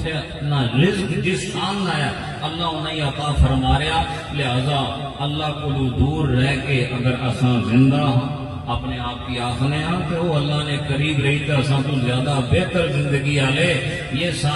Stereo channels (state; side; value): identical; both; correlation 1.00